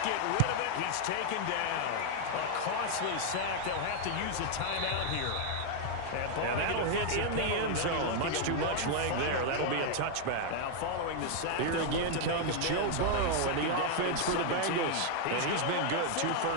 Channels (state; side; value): different; both; correlation 0.00